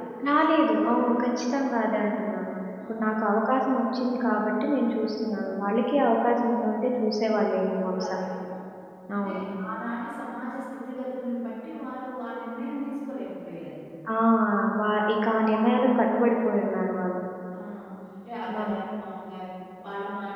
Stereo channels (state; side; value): identical; both; correlation 1.00